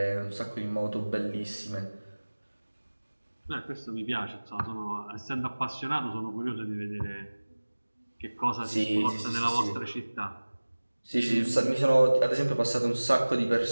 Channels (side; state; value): both; inverted; correlation -1.00